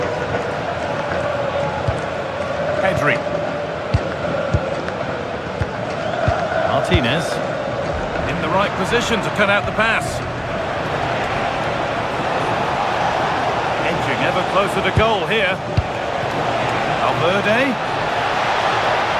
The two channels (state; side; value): identical; both; correlation 1.00